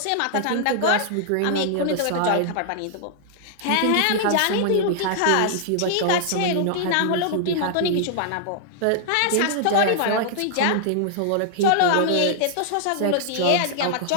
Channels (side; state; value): both; different; correlation -0.01